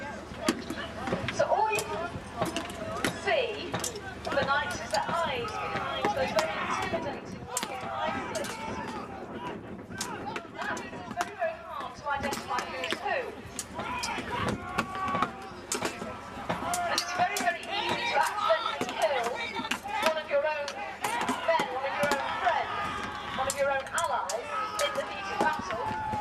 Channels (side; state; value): both; identical; correlation 1.00